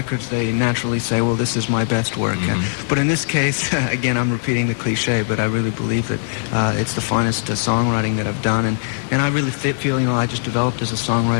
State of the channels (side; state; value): right; silent; digital silence